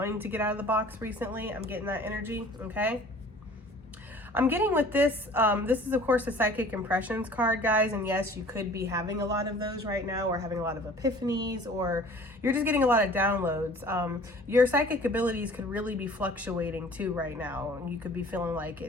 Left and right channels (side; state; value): both; normal; correlation 0.48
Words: to get out of the box recently. I'm getting that energy, okay? I'm getting with this, this is of course a psychic impressions card, guys, and yes, you could be having a lot of those right now, or having a lot of epiphanies, or you're just getting a lot of downloads. Your psychic abilities could really be fluctuating too right now, and you could be feeling like